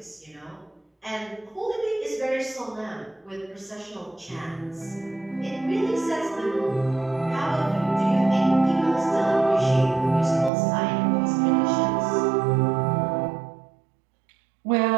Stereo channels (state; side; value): drops out; left; at 10.5 s